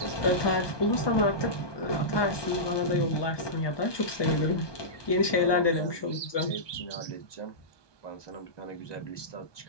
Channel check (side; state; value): right; late; 1.2 ms